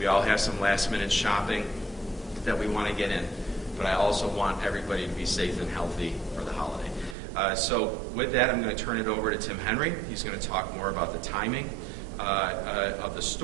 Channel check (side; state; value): left; drops out; at 7.2 s